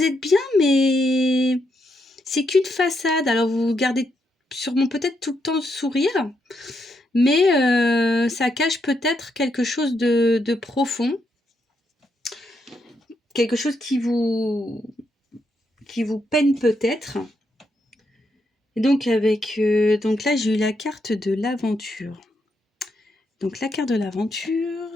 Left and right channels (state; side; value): normal; both; correlation 0.80